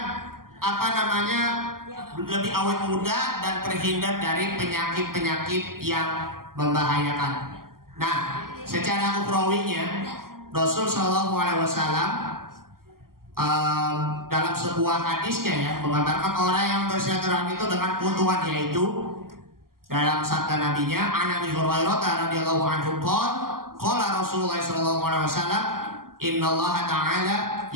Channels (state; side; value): late; left; 0.92 ms